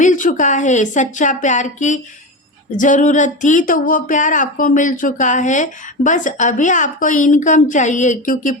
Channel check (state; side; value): normal; both; correlation 0.22